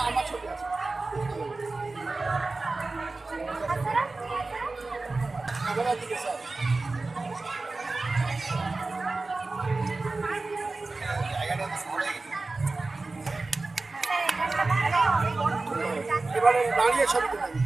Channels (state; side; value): quieter; left; 3.5 dB